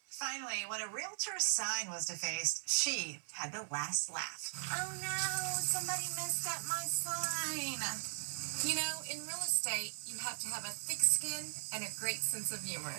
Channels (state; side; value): silent; left; 52 dB below the other